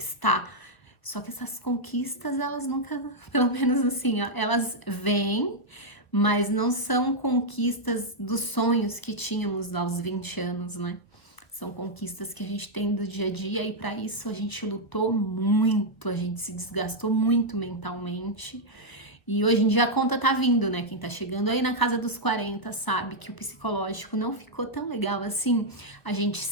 Só que essas conquistas, elas nunca, pelo menos assim, ó, elas vêm, mas não são conquistas dos sonhos que tínhamos aos 20 anos, né? São conquistas que a gente tem do dia a dia e para isso a gente lutou muito, a gente se desgastou muito mentalmente. E hoje em dia a conta tá vindo, né? Quem tá chegando aí na casa dos 40 sabe que o psicológico não ficou tão legal assim. A gente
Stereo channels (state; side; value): late; right; 1.3 ms